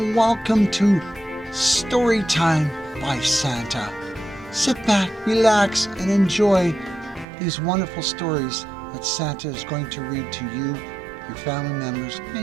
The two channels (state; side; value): drops out; left; at 7.2 s